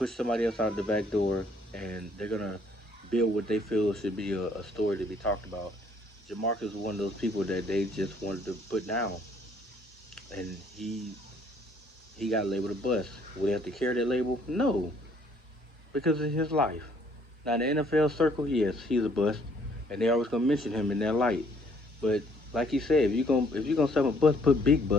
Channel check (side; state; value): both; normal; correlation 0.63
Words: somebody else out the back door, and they're gonna build what they feel should be a story to be talked about. Jamarcus is one of those people that they just wanted to put down, and he got labeled a bust. Would he have to carry that label? No, because it's his life. Now in the NFL circle, yes, he's a bust, and they always gonna mention him in that light. But like he said, if you gonna sell a bust, put big